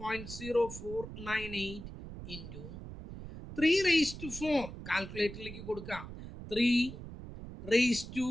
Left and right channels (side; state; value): right; noise; rumble, 11 dB below the sound